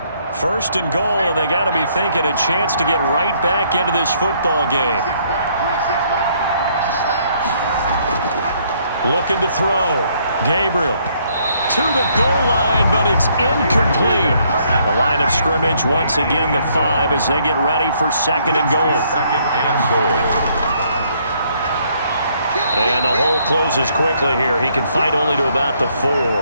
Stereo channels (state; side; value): inverted; both; correlation -0.68